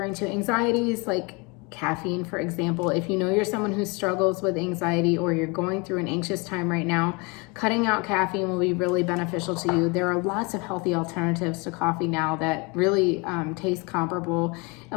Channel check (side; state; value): right; quieter; 28.9 dB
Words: to anxieties, like caffeine, for example. If you know you're someone who struggles with anxiety, or you're going through an anxious time right now, cutting out caffeine will be really beneficial to you. There are lots of healthy alternatives to coffee now that really taste comparable